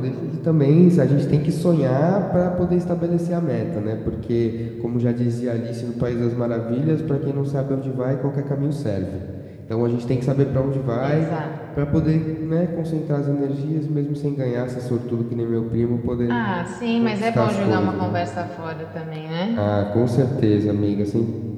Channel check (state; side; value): identical; both; correlation 1.00